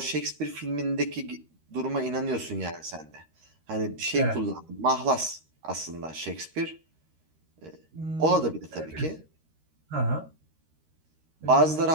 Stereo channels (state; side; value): late; left; 13 ms